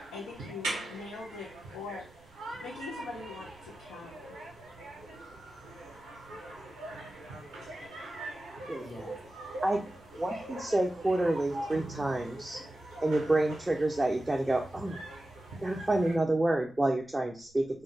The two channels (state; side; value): noise; right; rumble, 29 dB below the sound